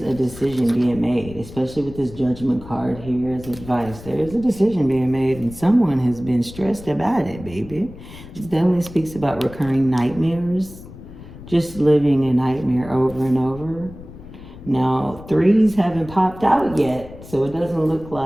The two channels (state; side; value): noise; left; rumble, 16 dB below the sound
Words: a decision being made, especially with this Judgment card here as advice. There is a decision being made, and someone has been stressed about it, baby. This definitely speaks about recurring nightmares, just living a nightmare over and over. Now, threes haven't popped out yet, so it doesn't look